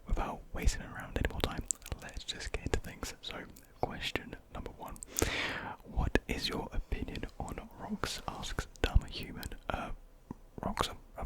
without wasting around any more time, let's just get into things. So question number 1, what is your opinion on rocks? Asks Dumb Human. Rocks are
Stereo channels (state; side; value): identical; both; correlation 1.00